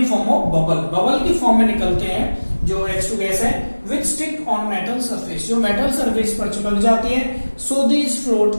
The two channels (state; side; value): inverted; both; correlation -1.00